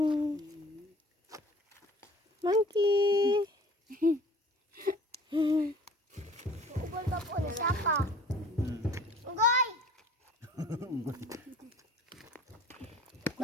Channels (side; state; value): both; normal; correlation 0.48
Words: Monkey. Ugol ka po na sapa. Ugol!